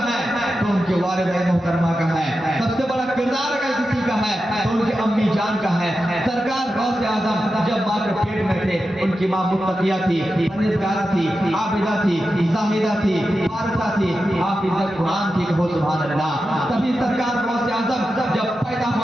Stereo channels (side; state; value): both; normal; correlation 0.90